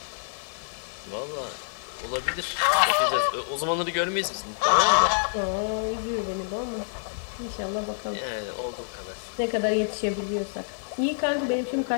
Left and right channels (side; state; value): right; silent; digital silence